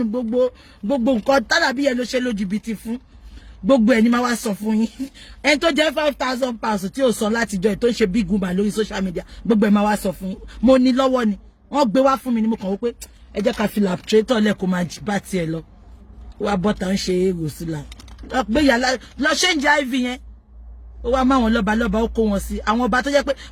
gbogbo nǹkan Falabi Yellow ṣe lójúbìtì fún gbogbo ẹni máa wá sọ fún yín ẹni tó jẹ́ £5,000 tí ó sọ láti jọ tó ń ṣe big woman lórí social media gbogbo ẹ máa wá sọ fún yín mo ní lọ́wọ́ ni wọ́n gbé wá fún mi ni mo kàn wò pé ẹ jẹ́ ká fi laptrator lẹ́kọ̀ọ́ máa bá tiẹ̀ lọ wá bọ́ta ń ṣe èrò sílá gbé yàrá lọ ṣe ń jẹ iv yẹn ó wá máwọn lọ́ba ó kó wọn sí àwọn ọba tó jẹ́ pé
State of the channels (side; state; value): both; identical; correlation 1.00